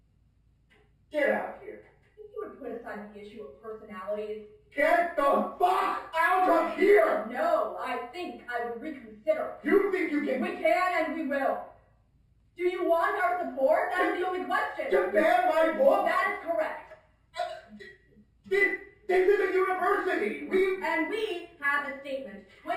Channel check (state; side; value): identical; both; correlation 1.00